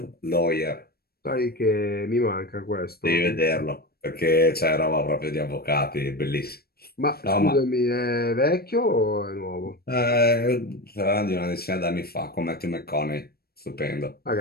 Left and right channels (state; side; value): late; right; 0.45 ms